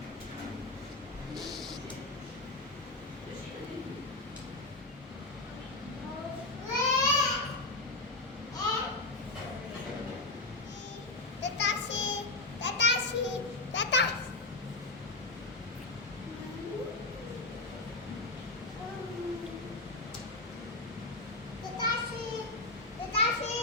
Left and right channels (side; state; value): right; quieter; 3.0 dB